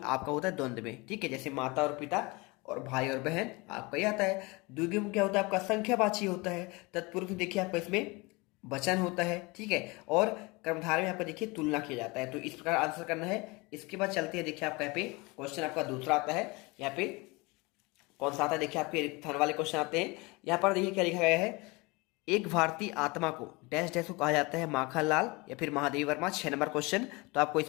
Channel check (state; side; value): quieter; right; 25.5 dB